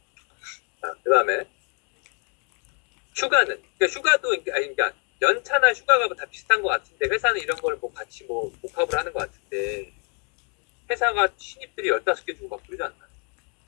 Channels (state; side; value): quieter; right; 37.1 dB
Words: 자, 그다음에 휴가는 그러니까 휴가도 그러니까 연차나 휴가가 다 비슷한 것 같은데 회사는 이런 걸 뭐 같이 뭐 복합을 하는 것 같은데 회사가 신입들이 15개 주고 막 그러지 않나?